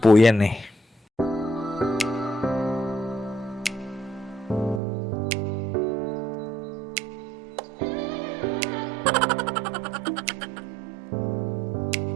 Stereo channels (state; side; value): drops out; left; at 4.8 s